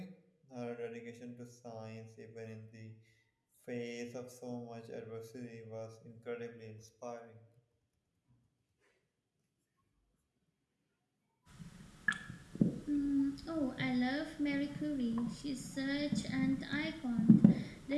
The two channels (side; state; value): both; identical; correlation 1.00